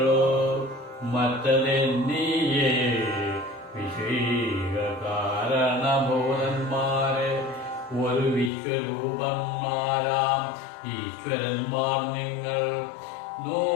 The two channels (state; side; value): drops out; right; at 8.5 s